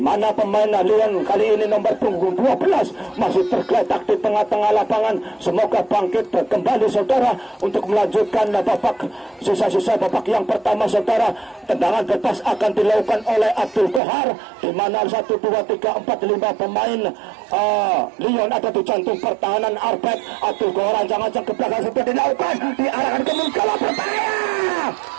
mana pemain Leon kali ini nomor punggung 12 masih tergeletak di tengah-tengah lapangan. Semoga bangkit kembali saudara untuk melanjutkan babak sisa-sisa babak yang pertama saudara. Tendangan bebas akan dilakukan oleh Abdul Kohar, di mana 1, 2, 3, 4, 5 pemain Leon ada di jantung pertahanan Arbek. Abdul Kohar ancang-ancang ke belakang sudah dilakukan, diarahkan ke Mungkala, berbahaya.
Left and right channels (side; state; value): left; drops out; at 14.0 s